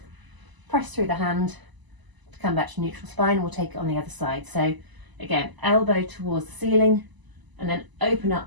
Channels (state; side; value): late; left; 1.0 ms